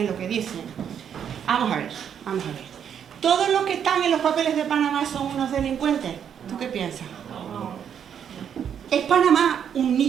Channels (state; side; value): quieter; left; 8.4 dB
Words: lo que dicen, vamos a ver. ¿Todos los que están en los papeles de Panamá son unos delincuentes? ¿Tú qué piensas? ¿Es Panamá un